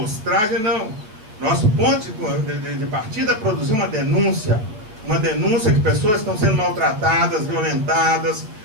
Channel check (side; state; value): left; late; 9.0 ms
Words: não. Nosso ponto de partida é produzir uma denúncia que pessoas estão sendo maltratadas, violentadas,